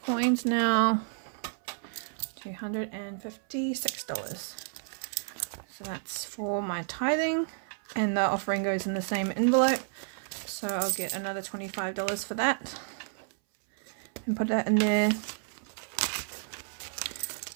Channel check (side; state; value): left; silent; 57 dB below the other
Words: coins now. $256. So that's for my tithing, and the offering goes in the same envelope. So I'll get another $25 for that and put that in there.